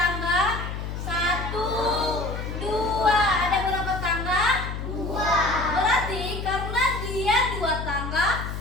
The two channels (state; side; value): noise; left; hum, 6 dB below the sound